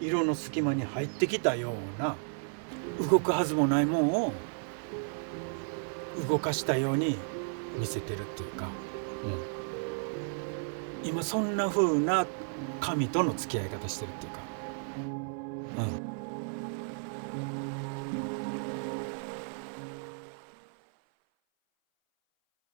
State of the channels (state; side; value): silent; left; 56 dB below the other